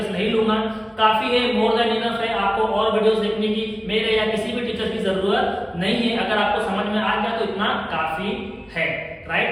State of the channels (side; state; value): both; identical; correlation 1.00